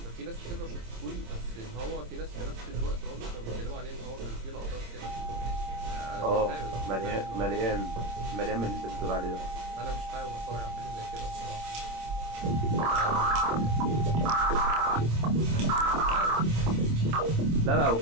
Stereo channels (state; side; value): late; left; 26 ms